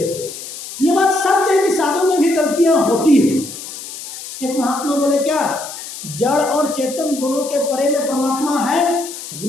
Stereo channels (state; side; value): noise; left; hiss, 11 dB below the sound